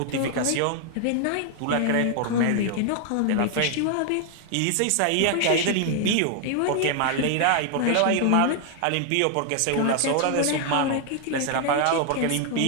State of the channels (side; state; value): both; different; correlation 0.00